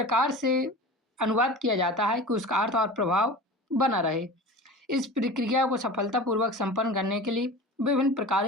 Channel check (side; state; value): both; normal; correlation 0.35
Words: से अनुवाद किया जाता है कि उसका अर्थ और प्रभाव बना रहे। इस प्रक्रिया को सफलतापूर्वक संपन्न करने के लिए विभिन्न